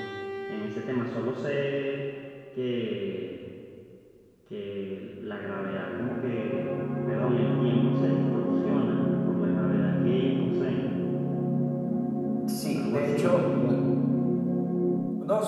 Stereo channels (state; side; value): identical; both; correlation 1.00